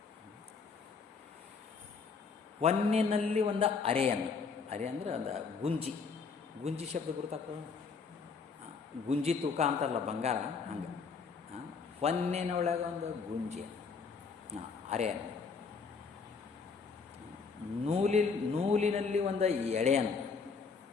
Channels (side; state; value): right; quieter; 5.1 dB